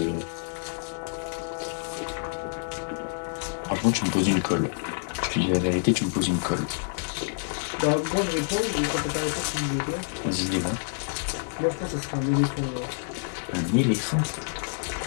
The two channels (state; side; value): silent; right; digital silence